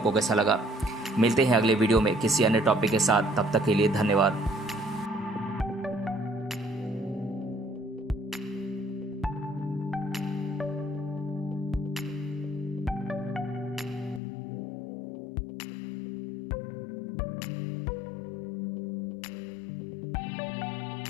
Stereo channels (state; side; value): drops out; right; at 14.2 s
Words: कैसा लगा। मिलते हैं अगले वीडियो में किसी अन्य टॉपिक के साथ। तब तक के लिए धन्यवाद।